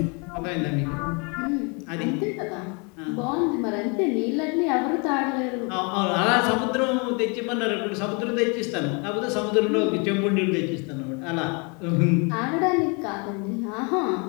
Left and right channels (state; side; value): quieter; right; 32.8 dB